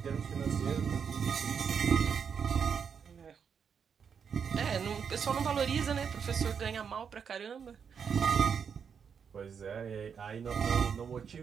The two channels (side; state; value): left; quieter; 6.8 dB